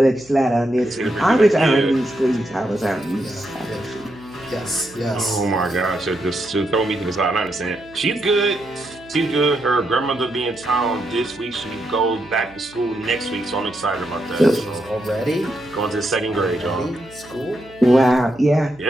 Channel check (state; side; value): noise; right; hum, 24 dB below the sound